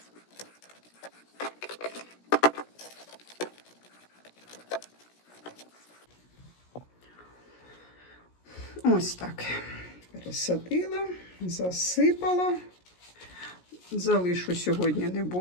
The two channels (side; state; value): right; late; 17 ms